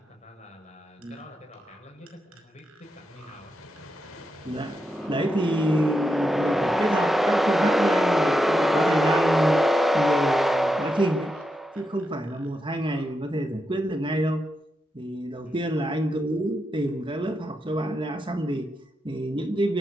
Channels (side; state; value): both; normal; correlation 0.86